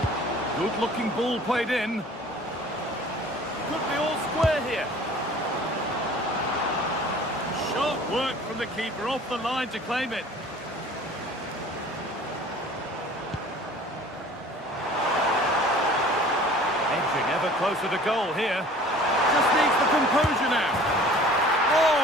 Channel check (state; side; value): normal; both; correlation 0.47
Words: Good-looking ball played in. Could be all square here. Sharp work from the keeper off the line to claim it. Edging ever closer to goal here. Just needs the composure now. Oh,